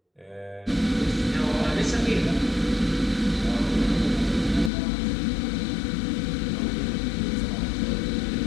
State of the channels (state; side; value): drops out; right; at 4.7 s